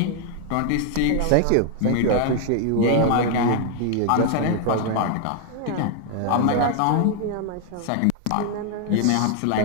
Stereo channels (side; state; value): both; different; correlation 0.00